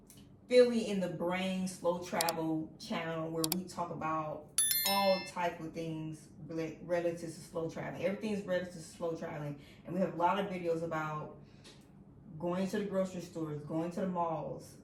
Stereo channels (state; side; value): identical; both; correlation 1.00